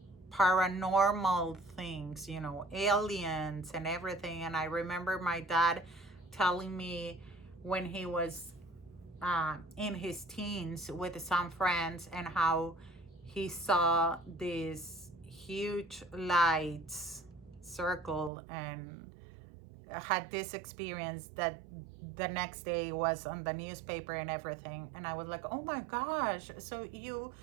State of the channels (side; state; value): left; drops out; at 18.3 s